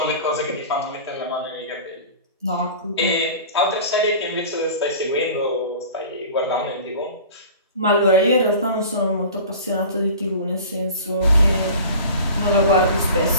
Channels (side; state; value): both; inverted; correlation -0.39